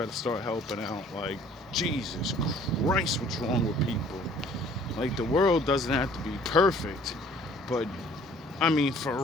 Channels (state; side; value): normal; both; correlation 0.55